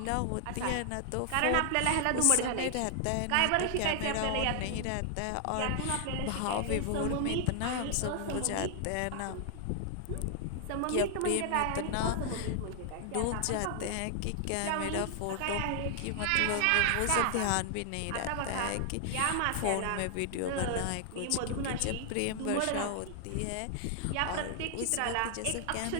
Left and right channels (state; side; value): different; both; correlation 0.00